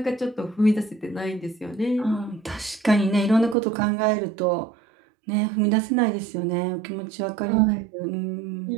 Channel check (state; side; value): drops out; left; at 3.6 s